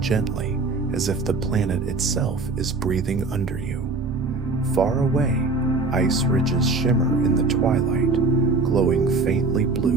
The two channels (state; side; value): quieter; left; 3.7 dB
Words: as if the planet itself is breathing under you. Far away, ice ridges shimmer in the twilight, glowing faintly